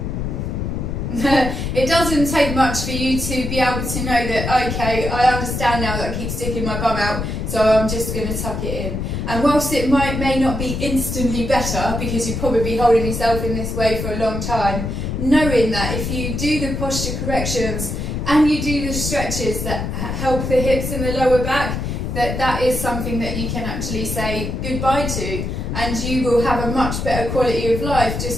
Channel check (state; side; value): noise; left; rumble, 3 dB below the sound